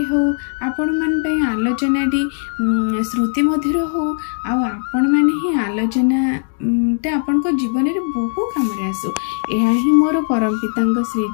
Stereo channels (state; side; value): silent; right; 63 dB below the other